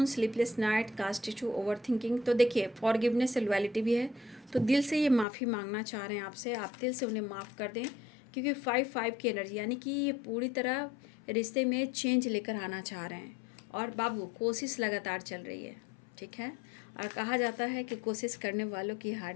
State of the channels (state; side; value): drops out; right; at 5.2 s